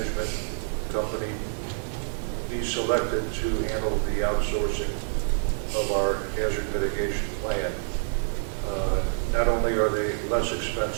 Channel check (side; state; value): left; silent; 60 dB below the other